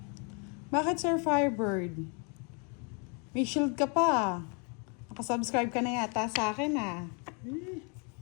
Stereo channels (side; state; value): right; quieter; 36.1 dB